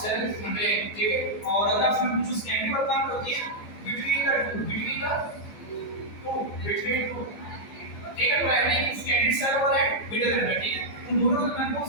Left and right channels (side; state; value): right; late; 14 ms